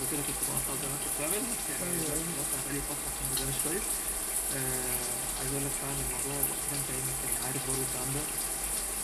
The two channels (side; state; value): both; identical; correlation 1.00